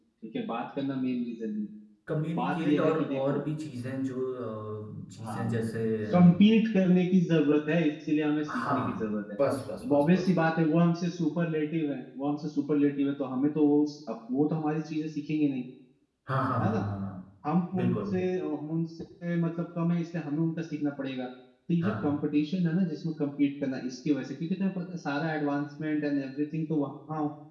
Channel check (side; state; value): both; identical; correlation 1.00